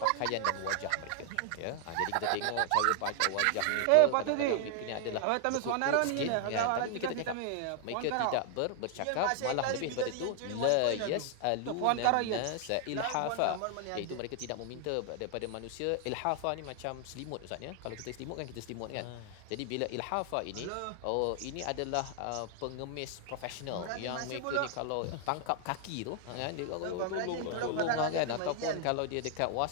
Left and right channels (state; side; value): different; both; correlation 0.00